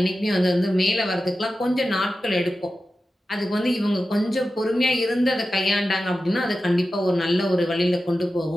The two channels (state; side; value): normal; both; correlation 0.93